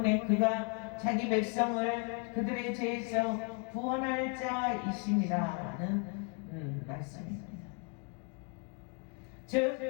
그가 자기 백성을 그들의 죄에서 구원할 자이심이라는 말씀입니다. 즉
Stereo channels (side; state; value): right; quieter; 34.1 dB